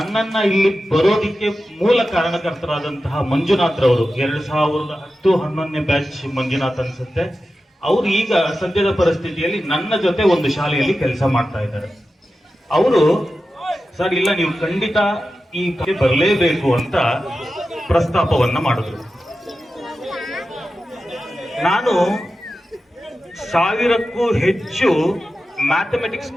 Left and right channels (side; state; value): both; normal; correlation 0.93